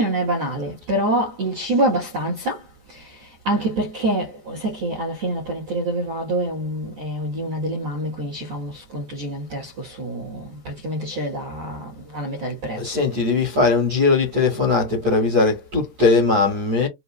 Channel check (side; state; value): left; late; 14 ms